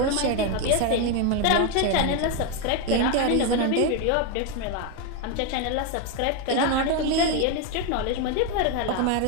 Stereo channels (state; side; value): different; both; correlation 0.01